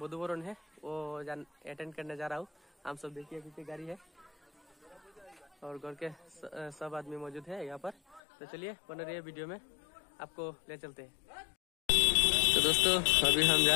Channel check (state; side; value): drops out; right; at 8.2 s